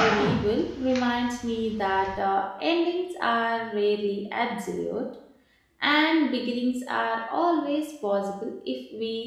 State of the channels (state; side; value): identical; both; correlation 1.00